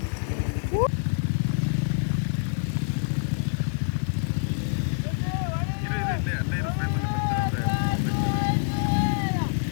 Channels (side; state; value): right; silent; digital silence